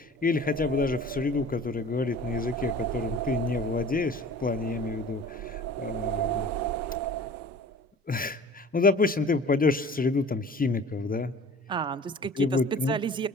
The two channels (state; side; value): normal; both; correlation 0.44